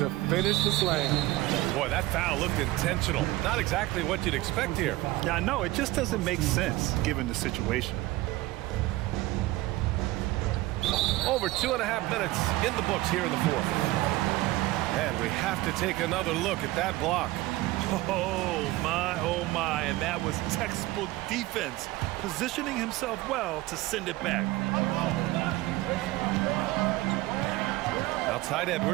finish the slam. Boy, that foul looked intentional. Not exactly what you'd expect here. Yeah, I know. It just doesn't make sense given the situation. Over 2.5 minutes in the books here in the fourth. And we have to take another look at that block. Oh my, and that was textbook defense, positioning himself well to send it back. Outside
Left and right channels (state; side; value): quieter; left; 18.6 dB